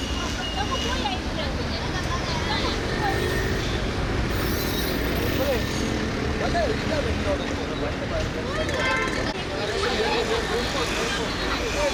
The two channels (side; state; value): both; identical; correlation 1.00